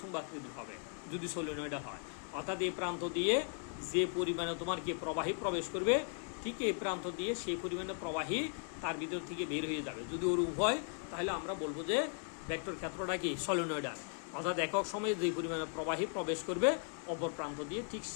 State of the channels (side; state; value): right; silent; 53 dB below the other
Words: চুম্বাকৃতির হবে যদি সলিনয়েডাল হয়। অর্থাৎ এই প্রান্ত দিয়ে যে পরিমাণে তোমার কি প্রবাহী প্রবেশ করবে, ঠিক এই প্রান্ত দিয়ে সেই পরিমাণে প্রবাহী তার ভিতর থেকে বের হয়ে যাবে। যদি ওর উভয়, তাহলে আমরা বলবো যে ভেক্টর ক্ষেত্রটা কি? সলিনয়েডাল। অর্থাৎ একক সময়ে যে পরিমাণে প্রবাহী প্রবেশ করবে অপর প্রান্ত দিয়ে, ঠিক